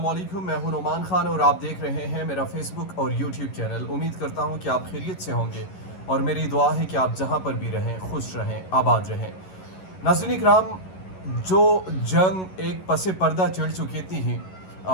वालेकुम। मैं हूं नोमान खान और आप देख रहे हैं मेरा फेसबुक और यूट्यूब चैनल। उम्मीद करता हूं कि आप खैरियत से होंगे और मेरी दुआ है कि आप जहां पर भी रहें खुश रहें, आबाद रहें। नाज़रीन इकराम, जो जंग एक पसे पर्दा चढ़ चुकी थी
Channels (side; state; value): right; late; 11 ms